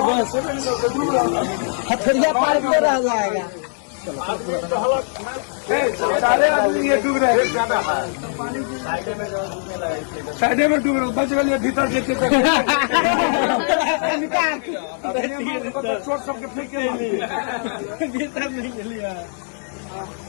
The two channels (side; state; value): right; silent; 60 dB below the other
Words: हथरिया पार में रह जाएगा। सारे आदमी ये डूब रहे हैं ज्यादा साइडे में डूब रहे बच गए भीतर देखे चोट सबके फेंक के भीतर नहीं लिया।